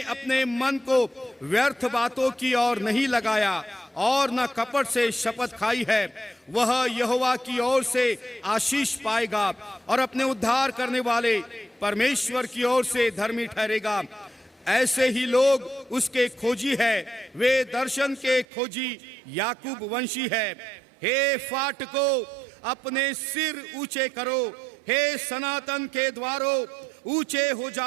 अपने मन को व्यर्थ बातों की ओर नहीं लगाया और न कपट से शपथ खाई है, वह यहोवा की ओर से आशीष पाएगा और अपने उद्धार करने वाले परमेश्वर की ओर से धर्मी ठहरेगा। ऐसे ही लोग उसके खोजी है, वे दर्शन के खोजी याकूब वंशी है। हे फाटको अपने सिर ऊंचे करो, हे सनातन के द्वारों ऊंचे हो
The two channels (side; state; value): left; drops out; at 18.4 s